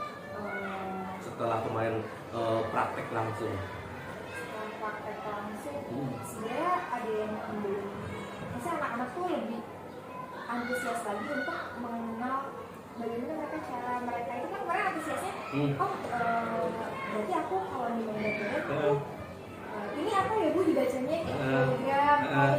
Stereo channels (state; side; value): identical; both; correlation 1.00